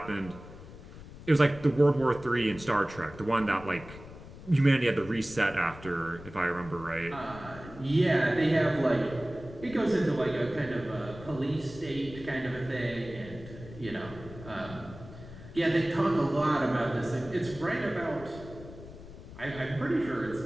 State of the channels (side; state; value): left; noise; rumble, 16 dB below the sound